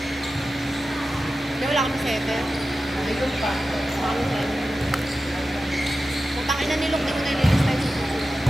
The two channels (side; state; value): both; normal; correlation 0.93